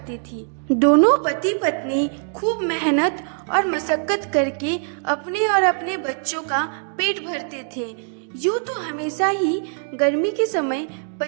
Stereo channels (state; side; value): silent; left; 64 dB below the other